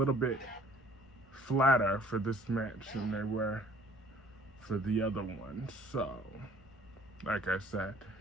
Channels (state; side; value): normal; both; correlation 0.56